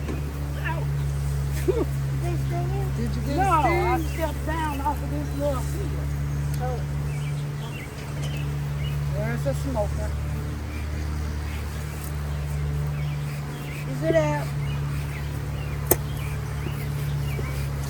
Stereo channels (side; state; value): both; identical; correlation 1.00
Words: Did you get No, a I sting? stepped down off of this little field. There's a smoker. Is it out?